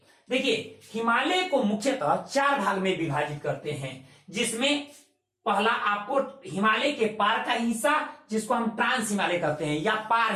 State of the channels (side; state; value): both; identical; correlation 1.00